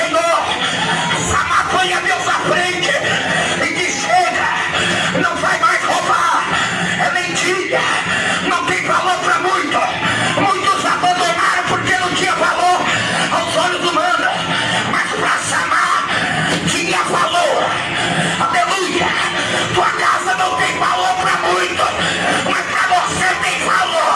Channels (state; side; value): identical; both; correlation 1.00